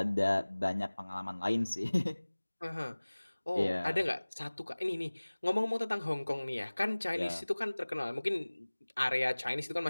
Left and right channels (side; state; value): both; inverted; correlation -1.00